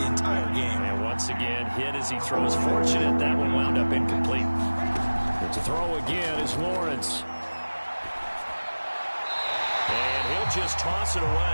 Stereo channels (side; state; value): both; inverted; correlation -1.00